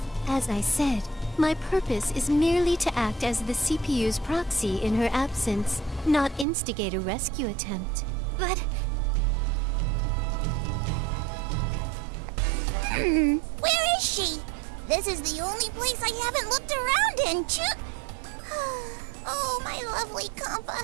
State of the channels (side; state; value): left; drops out; at 6.5 s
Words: As I said, my purpose is merely to act as the CPU's proxy in her absence, not instigate a rescue attempt. But... Where is she? This is the only place I haven't looked around in, Oh, my lovely compa.